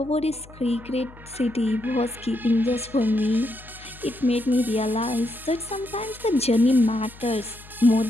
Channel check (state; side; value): noise; left; hum, 21 dB below the sound